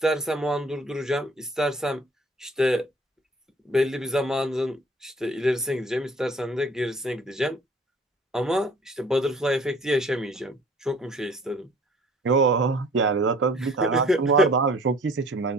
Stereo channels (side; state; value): both; normal; correlation 0.52